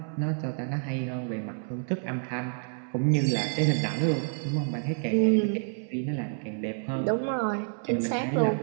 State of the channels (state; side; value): silent; left; 59 dB below the other